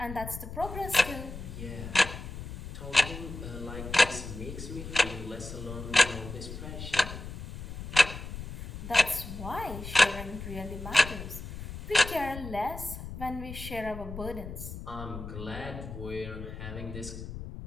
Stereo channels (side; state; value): left; noise; rumble, 9 dB below the sound